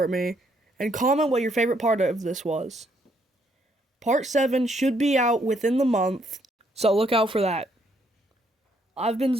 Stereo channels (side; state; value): both; normal; correlation 0.71